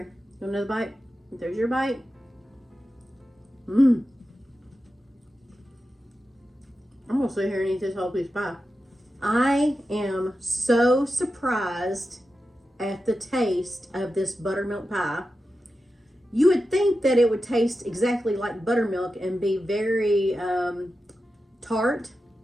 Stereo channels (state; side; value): normal; both; correlation 0.91